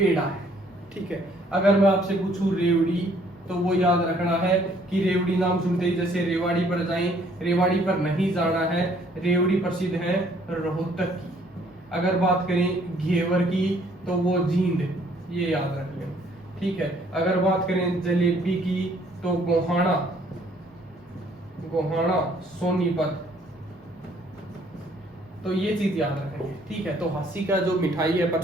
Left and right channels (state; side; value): normal; both; correlation 0.62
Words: है, ठीक है। अगर मैं आपसे पूछूं रेवड़ी, तो वो याद रखना है कि रेवड़ी नाम सुनते ही जैसे रेवाड़ी पर जाएं, रेवाड़ी पर नहीं जाना है, रेवड़ी प्रसिद्ध है रोहतक की। अगर बात करें घेवर की तो वो जींद, ये याद रख लें, ठीक है। अगर बात करें जलेबी की तो गोहाना, गोहाना सोनीपत, तो ये चीज याद रखेंगे, ठीक है। तो हास्य का जो मिठाई है